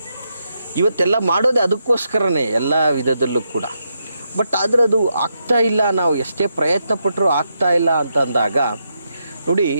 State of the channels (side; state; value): both; inverted; correlation -0.82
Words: ಇವತ್ತೆಲ್ಲ ಮಾಡೋದೇ ಅದಕ್ಕೋಸ್ಕರನೇ ಎಲ್ಲ ವಿಧದಲ್ಲೂ ಕೂಡ. ಬಟ್ ಆದರೆ ಅದು ಆಗ್ತಾ ಇಲ್ಲ, ನಾವು ಎಷ್ಟೇ ಪ್ರಯತ್ನ ಪಟ್ಟರೂ ಆಗ್ತಾ ಇಲ್ಲ ಅಂತ ಅಂದಾಗ ನೋಡಿ,